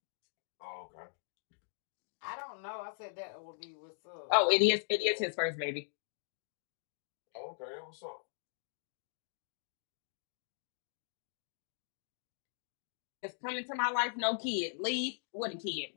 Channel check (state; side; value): silent; right; digital silence